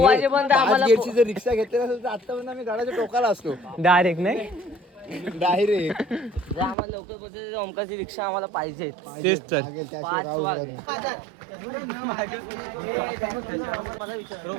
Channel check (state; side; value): drops out; left; at 6.8 s